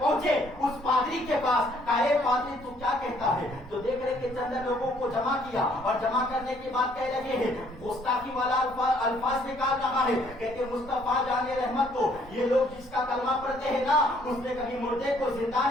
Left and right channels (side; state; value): both; normal; correlation 0.64